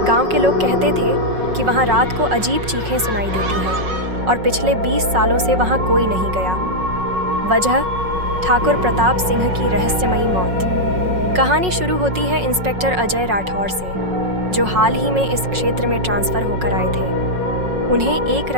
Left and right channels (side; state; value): left; late; 5.4 ms